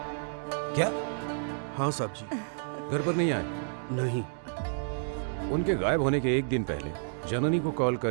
क्या? हाँ साहब जी। घर पर नहीं आए? नहीं। उनके गायब होने के एक दिन पहले जननी को कॉल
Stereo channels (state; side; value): silent; left; digital silence